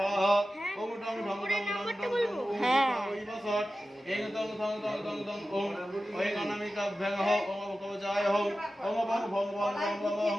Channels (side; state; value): both; normal; correlation 0.94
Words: ওং ডং ডং ডং ডং ডং হ্যাঁ ওই বসৎ ইং তং থং দং দং দং ওং ওং অনামিকাভ্যং হো ওং কবচায় হো ওং বং ভং ভং ভং ভং